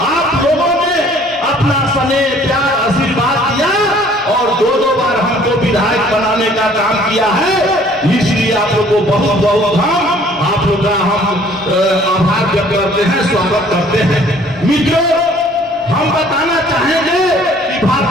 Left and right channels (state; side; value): normal; both; correlation 0.56